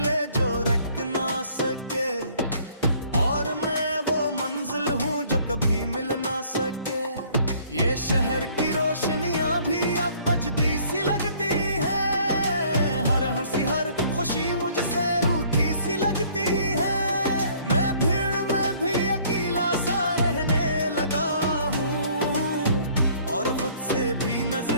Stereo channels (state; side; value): inverted; both; correlation -0.58